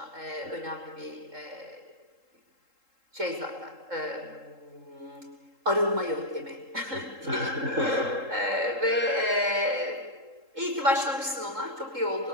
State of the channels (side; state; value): left; late; 3.7 ms